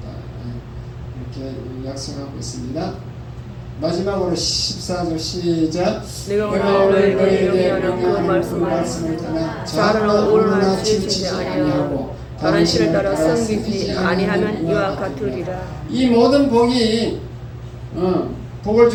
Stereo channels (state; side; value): identical; both; correlation 1.00